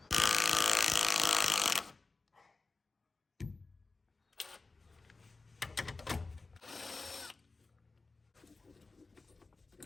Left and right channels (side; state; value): right; quieter; 3.7 dB